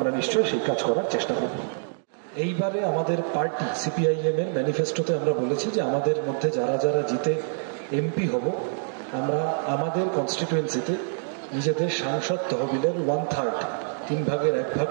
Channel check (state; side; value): silent; left; digital silence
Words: নিশ্চয়ই সেই কাজ করার চেষ্টা করব। এইবারে আমাদের পার্টি সিপিআইএম এর ম্যানিফেস্টোতে আমরা বলেছি যে আমাদের মধ্যে যারা যারা জিতে এমপি হব, আমরা আমাদের কনস্টিটুয়েন্সিতে নিজেদের সাংসদ তহবিলের 1/3, 3 ভাগের 1 ভাগ